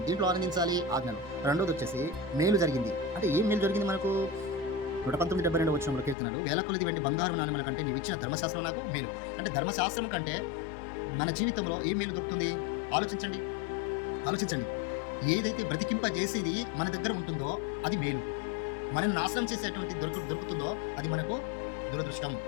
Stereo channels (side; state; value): right; drops out; at 6.2 s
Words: దీంట్లో ఆనందించాలి ఆజ్ఞలు. రెండోది వచ్చేసి మేలు జరిగింది. అంటే ఏం మేలు జరిగింది మనకు? 119:72 వచనంలో కీర్తనలు, వేల కొలది వెండి బంగారు నాణెముల కంటే నీవు ఇచ్చిన ధర్మశాస్త్రం నాకు మేలు. అంటే ధర్మశాస్త్రం కంటే మన జీవితంలో ఏం మేలు దొరుకుతుంది? ఆలోచించండి. ఏదైతే బ్రతికింపజేసేది మన దగ్గర ఉంటుందో అది మేలు. మనల్ని నాశనం చేసేటువంటి దొరుకుతుందో అది మనకు దురదృష్టం.